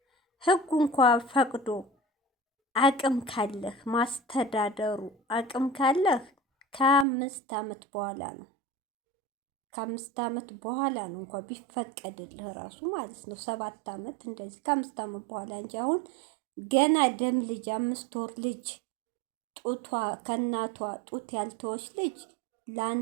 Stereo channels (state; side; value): drops out; left; at 7.1 s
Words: ህጉ እንኳ ፈቅዶ አቅም ካለህ ማስተዳደሩ አቅም ካለህ ከ5 ዓመት በኋላ ነው። ከ5 ዓመት በኋላ ነው እንኳ ቢፈቀድልህ ራሱ ማለት ነው። 7 ዓመት እንደዚህ ከ5 ዓመት በኋላ እንጂ አሁን ገና ደም ልጅ 5 ወር ልጅ ጡቷ ከእናቷ ጡት ያልተወች ልጅ